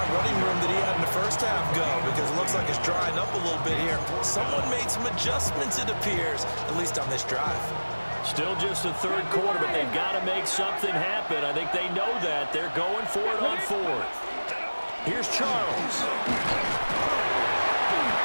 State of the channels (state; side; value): inverted; both; correlation -1.00